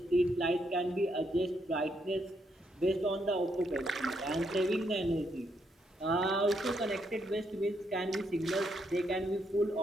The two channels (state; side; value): normal; both; correlation 0.76